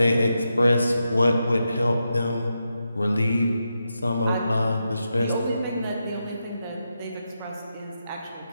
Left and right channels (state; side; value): inverted; both; correlation -0.86